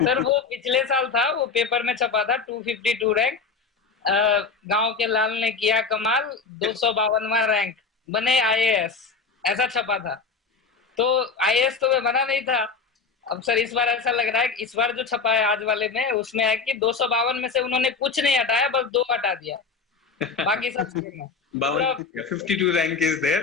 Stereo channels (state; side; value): quieter; right; 4.9 dB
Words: वो पिछले साल था, वो पेपर में छपा था 252 रैंक। गांव के लाल ने किया कमाल, 252वां रैंक, बने आईएएस, ऐसा छपा था। तो आईएएस तो मैं बना नहीं था। अब सर इस बार ऐसा लग रहा है कि इस बार जो छपा है आज वाले में, उसमें है कि 252 में से उन्होंने कुछ नहीं हटाया, बस 2 हटा दिया, बाकी सब सेम है पूरा। 52 रैंक इज